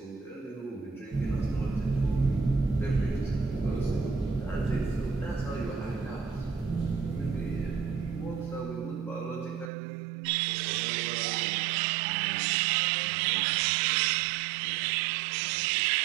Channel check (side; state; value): left; drops out; at 9.7 s